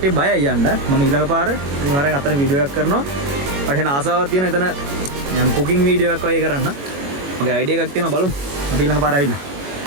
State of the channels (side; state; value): left; late; 21 ms